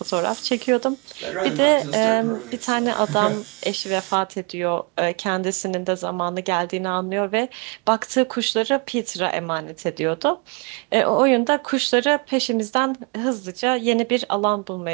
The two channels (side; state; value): left; quieter; 30.3 dB